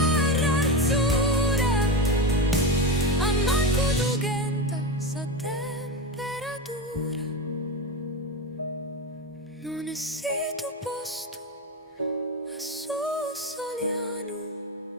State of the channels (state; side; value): normal; both; correlation 0.18